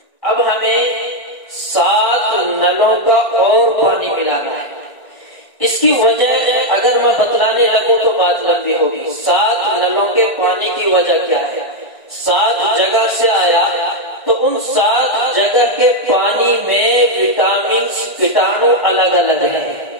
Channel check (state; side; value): late; right; 1.5 ms